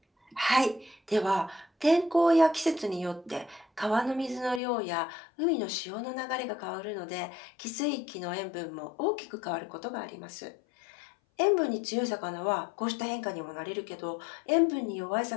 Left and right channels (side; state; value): right; drops out; at 4.6 s